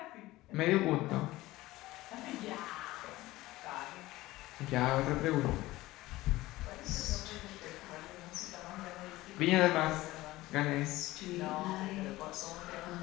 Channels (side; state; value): right; quieter; 18.0 dB